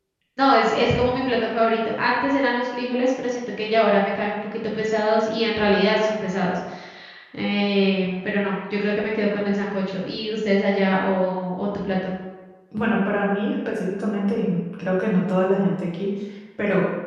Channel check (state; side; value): identical; both; correlation 1.00